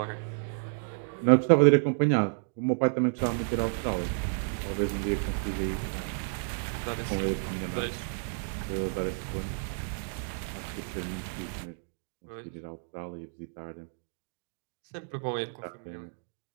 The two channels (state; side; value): silent; left; digital silence